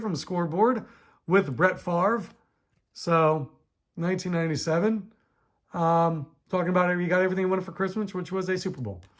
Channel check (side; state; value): both; identical; correlation 1.00